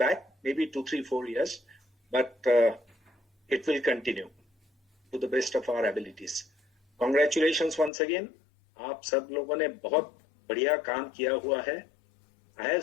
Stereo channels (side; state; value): right; drops out; at 7.9 s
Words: maybe 2, 3, 4 years, but it will continue to the best of our abilities. Congratulations once again. आप सब लोगों ने बहुत बढ़िया काम किया हुआ है. I